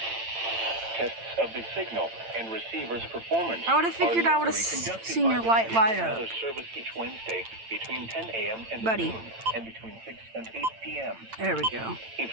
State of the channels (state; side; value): late; left; 8.9 ms